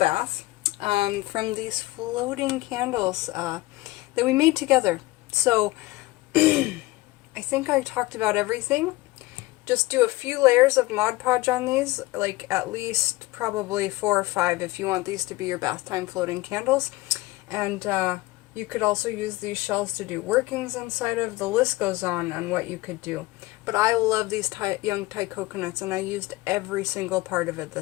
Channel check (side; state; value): right; quieter; 20.0 dB